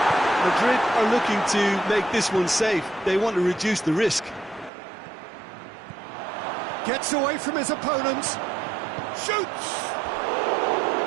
Madrid are looking to make this one safe. They want to reduce the risk. Gets away from his opponent. Shoots!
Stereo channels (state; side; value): drops out; left; at 4.7 s